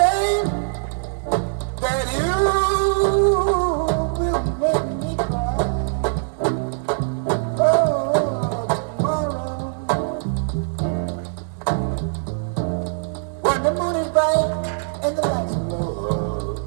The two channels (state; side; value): silent; left; 64 dB below the other